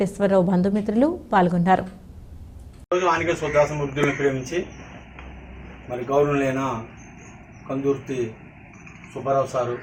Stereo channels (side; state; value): both; identical; correlation 1.00